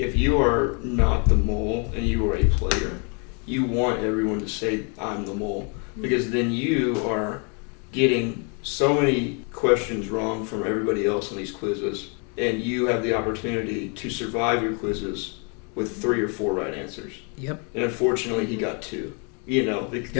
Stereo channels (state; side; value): quieter; right; 36.5 dB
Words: you are not the mole and you are a player, you want everyone to say, I'm the mole, because then you are getting so many questions wrong from everybody else in these quizzes, and you have the opportunity to survive your quizzes with 3 or 4 right answers. Yep. And unfortunately, he got 2.